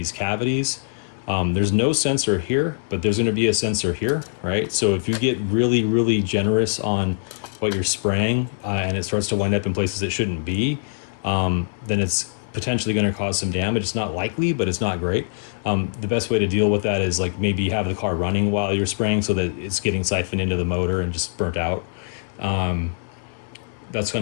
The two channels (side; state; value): right; silent; digital silence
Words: cavities. There's no sensor here, but there's going to be a sensor here, right? So if you get really, really generous on what you're spraying and it starts to wind up in places it shouldn't be, then it's potentially going to cause some damage. It's not likely, but it's not great. The best way to deal with that is like maybe have the car running while you're spraying so that it's getting siphoned into the motor and just burnt out. That's